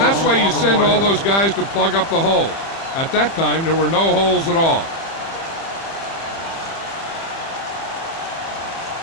that's why you send all those guys to plug up the holes. At that time, there were no holes at all.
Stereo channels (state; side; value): late; right; 30 ms